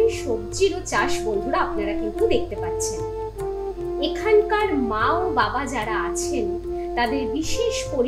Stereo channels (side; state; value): both; identical; correlation 1.00